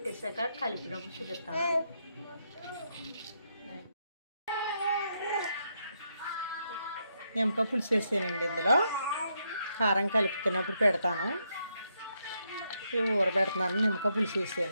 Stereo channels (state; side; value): inverted; both; correlation -0.79